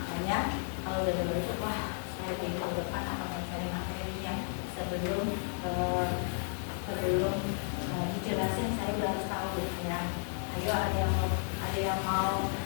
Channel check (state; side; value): silent; right; 56 dB below the other